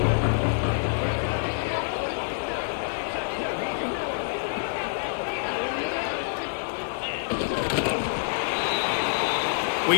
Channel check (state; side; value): silent; right; digital silence